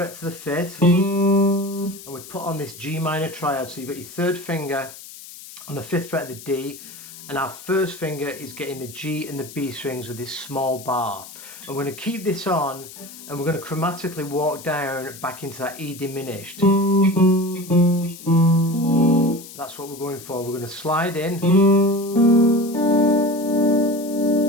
to the 5th, and we put on this G minor triad. So you've got your 3rd finger on the 5th fret of the D, and our 1st finger is getting the G and the B strings with this small bar. And we're going to keep this on, and we're going to chromatically walk down back into that E diminished. That's what we're going for. We're going to slide in, and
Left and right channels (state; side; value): noise; left; hiss, 16 dB below the sound